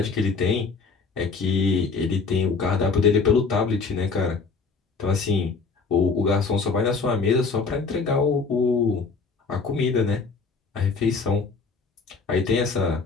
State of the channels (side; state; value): right; quieter; 4.7 dB